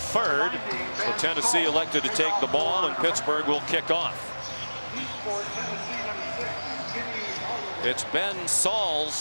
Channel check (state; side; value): inverted; both; correlation -1.00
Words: So Tennessee elected to take the ball, and Pittsburgh will kick off. It's Ben